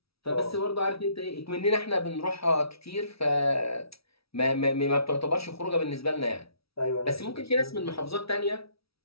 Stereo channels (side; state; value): right; late; 0.76 ms